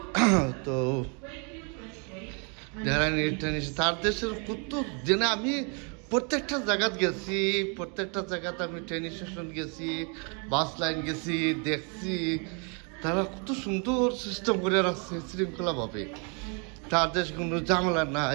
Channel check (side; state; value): left; quieter; 36.0 dB